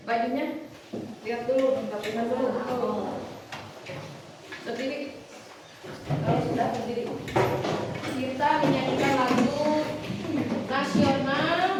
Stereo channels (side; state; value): both; identical; correlation 1.00